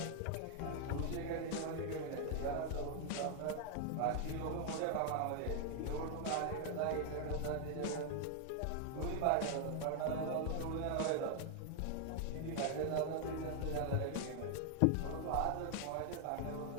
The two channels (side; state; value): both; different; correlation 0.00